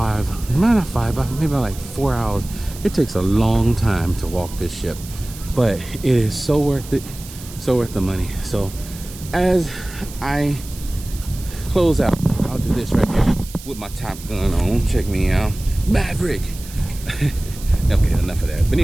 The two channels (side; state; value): right; noise; hiss, 16 dB below the sound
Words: maybe like 4 hours. It takes a long time to walk this ship, but it is so worth it, so worth the money. So as I close out, I'll do this right here with my Top Gun on. Check me out, Maverick. Okay, enough of that. But